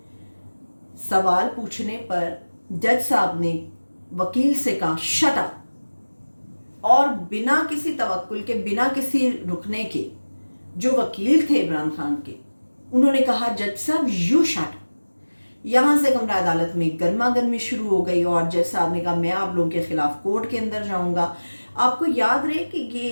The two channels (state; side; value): inverted; both; correlation -1.00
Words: سوال پوچھنے پر جج صاحب نے وکیل سے کہا شٹ اپ، اور بنا کسی توکل کے، بنا کسی رکنے کے، جو وکیل تھے عمران خان کے، انہوں نے کہا جج صاحب یو شٹ. یہاں سے کمرہ عدالت میں گرما گرمی شروع ہو گئی اور جج صاحب نے کہا میں آپ لوگوں کے خلاف کورٹ کے اندر جاؤں گا. آپ کو یاد رہے کہ